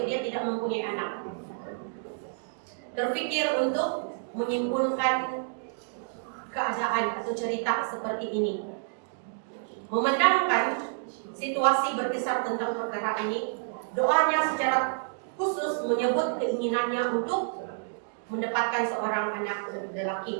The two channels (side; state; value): left; silent; digital silence